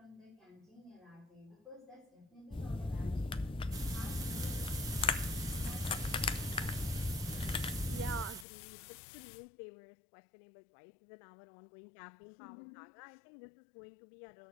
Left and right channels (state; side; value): drops out; right; at 8.5 s